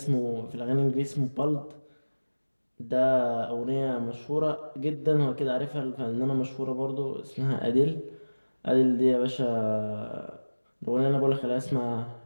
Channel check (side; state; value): both; inverted; correlation -1.00